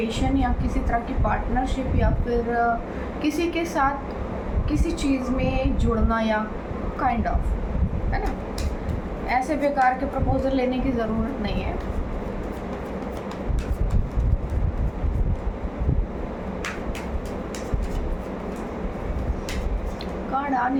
या किसी तरह की पार्टनरशिप या फिर किसी के साथ किसी चीज़ में जुड़ना या काइंड ऑफ, है ना। ऐसे बेकार के प्रपोजल लेने की ज़रूरत नहीं है। कार्ड आ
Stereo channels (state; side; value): identical; both; correlation 1.00